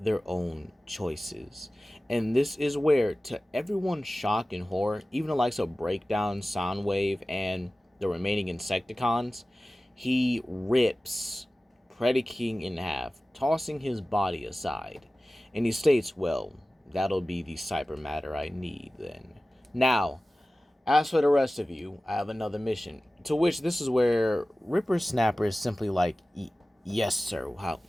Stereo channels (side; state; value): both; normal; correlation 0.96